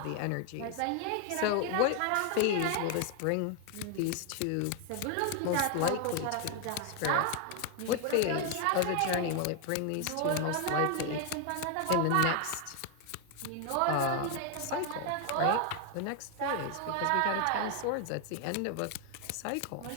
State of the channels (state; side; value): different; both; correlation 0.01